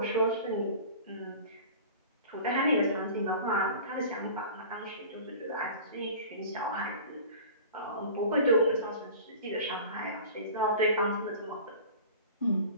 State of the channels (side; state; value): both; inverted; correlation -0.39